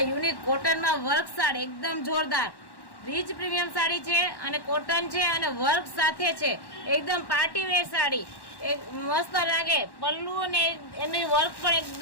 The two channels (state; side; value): late; right; 1.1 ms